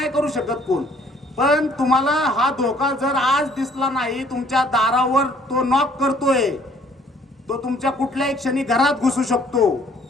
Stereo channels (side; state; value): both; normal; correlation 0.59